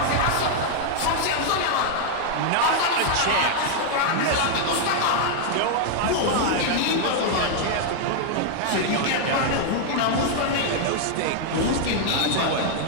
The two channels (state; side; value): different; both; correlation 0.00